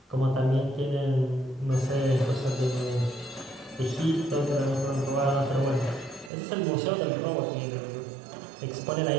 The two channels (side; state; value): left; drops out; at 6.3 s